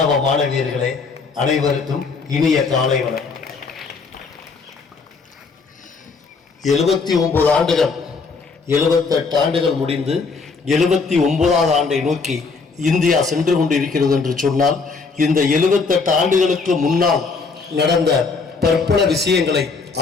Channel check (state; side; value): quieter; right; 4.6 dB